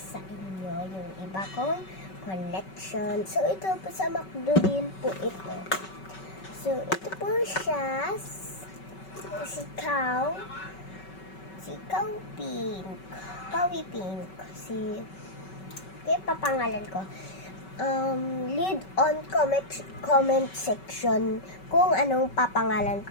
sa inyo yung iba kong collection. So, ito po sa McDo din po ito. So, ito po siya, si Cow Pink, Cowy Pink, kaya papangalan ko. Lead on comment section kung anong papangalan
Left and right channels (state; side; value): late; right; 5.3 ms